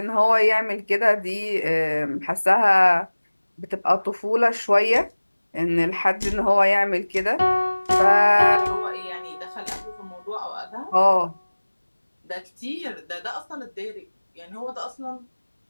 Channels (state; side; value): inverted; both; correlation -1.00